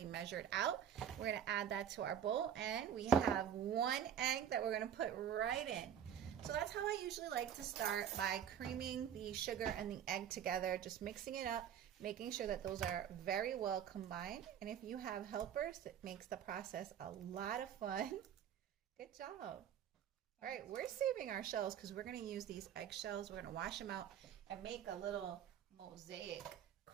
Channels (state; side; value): quieter; left; 9.3 dB